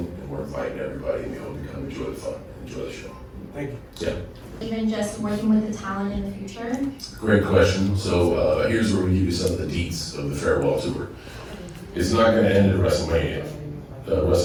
we're inviting everybody, and we hope you come enjoy the fun, enjoy the show. Thank you. Yeah. Even just working with the talent in the future? Great question. So here's where we give you some of the deets of the farewell tour. It's not going to end at WrestleMania.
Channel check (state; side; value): identical; both; correlation 1.00